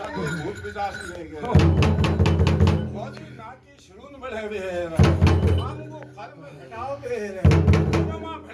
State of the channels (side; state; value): both; identical; correlation 1.00